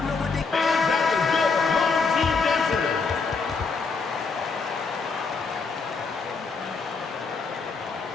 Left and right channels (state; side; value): quieter; right; 4.7 dB